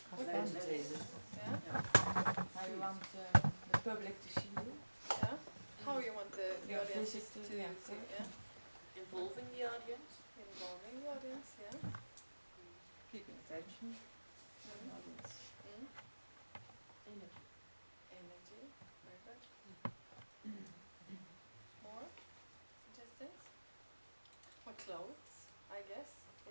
What Entertainment. Yeah. How you want the public to see you. Yeah. How you want the Your audience to visit to see? the Yeah. Involving the audience. Involving the audience. Yeah. Keeping attention. Mm. Audience. Mm. Energy. Energy. Very good. More suggestions? What clothes, I guess,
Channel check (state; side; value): inverted; both; correlation -1.00